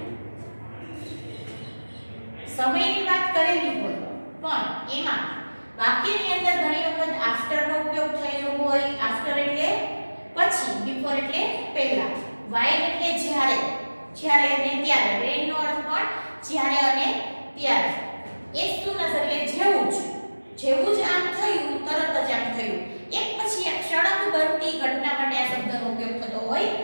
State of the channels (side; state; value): both; inverted; correlation -1.00